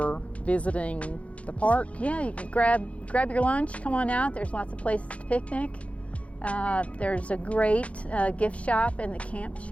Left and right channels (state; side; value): late; right; 0.064 ms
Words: visiting the park. Yeah, you can grab your lunch, come on out. There's lots of places to picnic. There's a great gift shop in the camp